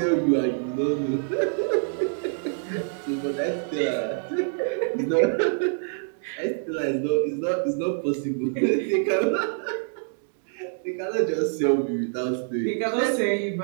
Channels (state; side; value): silent; left; digital silence